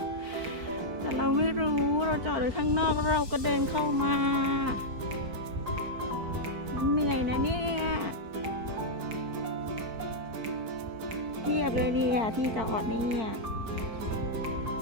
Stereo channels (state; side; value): late; left; 4.5 ms